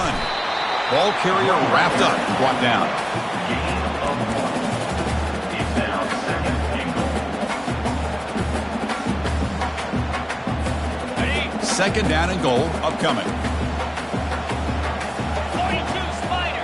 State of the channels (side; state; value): both; identical; correlation 1.00